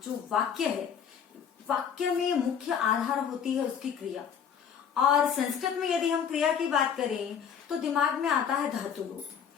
जो वाक्य है, वाक्य में मुख्य आधार होती है उसकी क्रिया। और संस्कृत में यदि हम क्रिया की बात करें तो दिमाग में आता है धातु रूप।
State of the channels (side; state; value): right; quieter; 7.7 dB